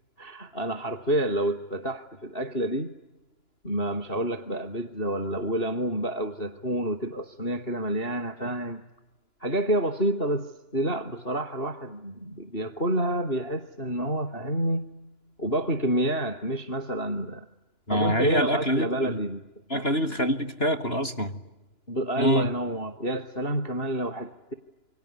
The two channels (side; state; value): right; late; 2.9 ms